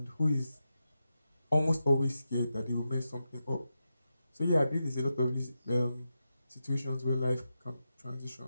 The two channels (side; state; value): both; inverted; correlation -0.89